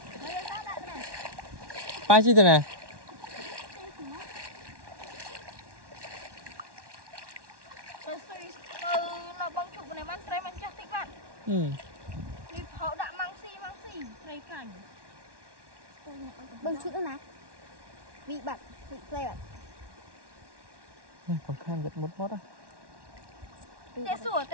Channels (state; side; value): late; left; 1.1 ms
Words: Ba chi thế này? Bưng chút nữa nè. Vị bạc, vị play bạc. Còn khăn giật một mót á. Tê sủa